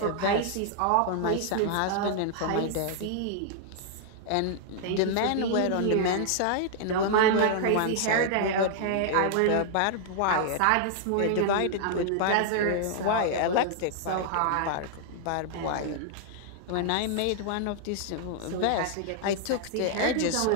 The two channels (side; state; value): both; different; correlation -0.01